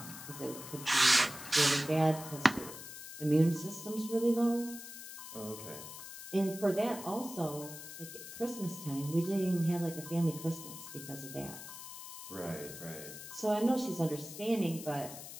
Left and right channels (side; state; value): left; noise; hiss, 11 dB below the sound